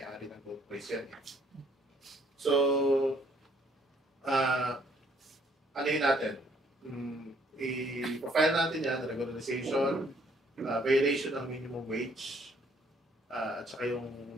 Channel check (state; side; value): normal; both; correlation 0.64